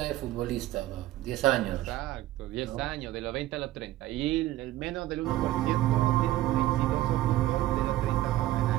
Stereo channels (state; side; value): quieter; left; 15.3 dB